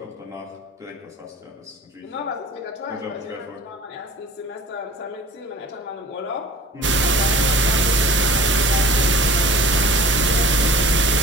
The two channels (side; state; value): both; normal; correlation 0.43